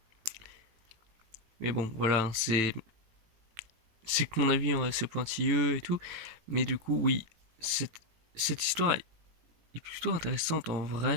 Mais bon, voilà, c'est que mon avis est assez pointilleux et tout, mais du coup, oui, cette histoire est plutôt intéressante en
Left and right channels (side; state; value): left; late; 18 ms